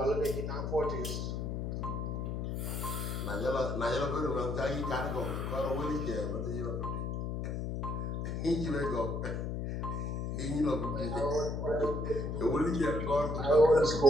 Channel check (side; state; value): left; noise; hum, 2 dB below the sound